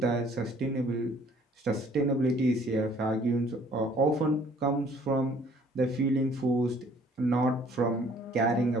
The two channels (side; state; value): both; normal; correlation 0.58